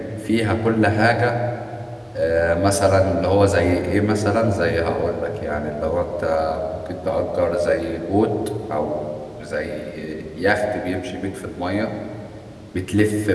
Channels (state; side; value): identical; both; correlation 1.00